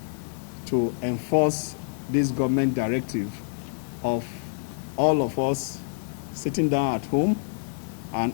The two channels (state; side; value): silent; right; digital silence